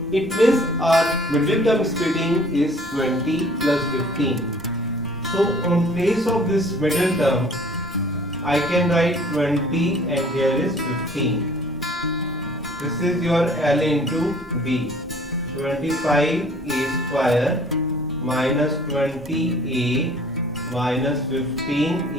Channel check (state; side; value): noise; right; rumble, 22 dB below the sound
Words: It means our middle term splitting is 20 plus 15. So on place of this middle term, I can write 20 and here is 15. This is your L into B. 25a square minus 20a minus